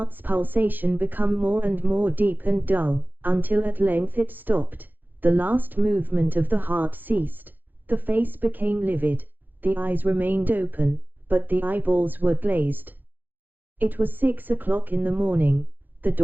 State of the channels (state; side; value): late; left; 0.087 ms